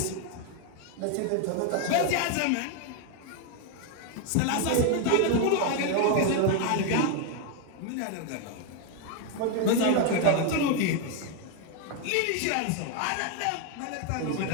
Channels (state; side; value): different; both; correlation 0.01